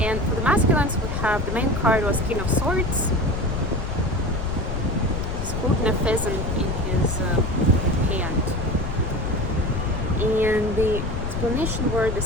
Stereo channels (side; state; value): left; noise; rumble, 3 dB below the sound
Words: for the masculines, we have, the main card was King of Swords. He's holding a pheasant in his hand. And the explanation were the